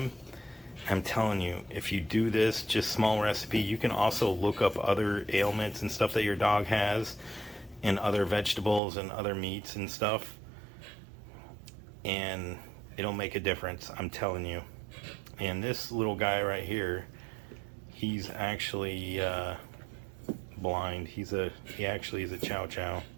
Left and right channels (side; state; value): left; drops out; at 8.8 s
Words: I'm telling you, if you do this, just small recipe, you can also look up other ailments and stuff that your dog has, and other vegetables and other meats and stuff, and it'll make a difference, I'm telling you. And this little guy right here, he's actually blind. He actually is a chow chow,